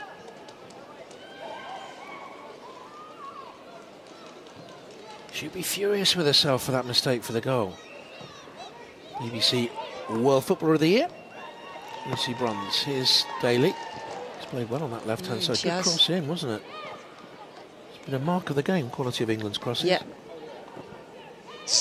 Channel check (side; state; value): both; identical; correlation 1.00